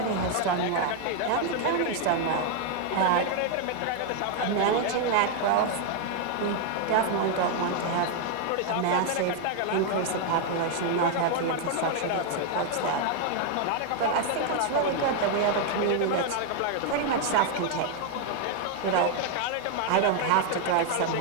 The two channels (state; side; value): different; both; correlation 0.00